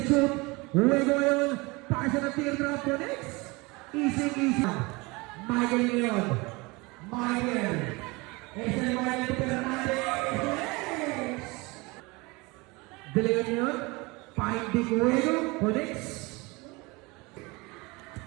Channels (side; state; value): left; quieter; 25.0 dB